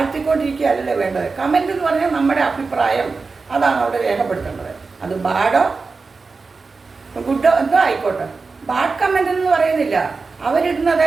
വേണ്ടത്. കമൻ്റ് എന്ന് പറഞ്ഞാൽ നമ്മുടെ അഭിപ്രായം, അതാണ് അവിടെ രേഖപ്പെടുത്തേണ്ടത്. അത് ബാഡോ ഗുഡോ എന്തോ ആയിക്കോട്ടെ. ബാഡ് കമൻ്റ് എന്ന് പറയുന്നില്ല. അവരിടുന്നത്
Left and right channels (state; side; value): quieter; left; 4.3 dB